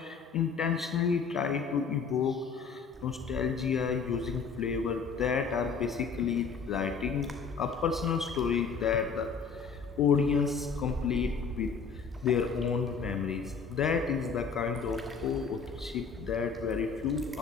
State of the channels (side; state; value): right; quieter; 5.5 dB